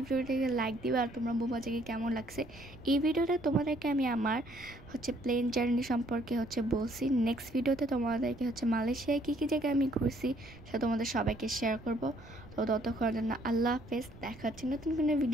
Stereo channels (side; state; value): right; noise; rumble, 20 dB below the sound